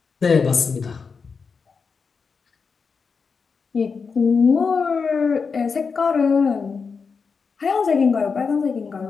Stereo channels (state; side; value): quieter; right; 5.3 dB